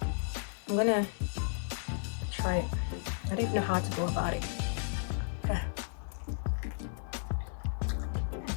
I'm gonna try it. I don't even know how to go about it.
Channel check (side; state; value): right; silent; 55 dB below the other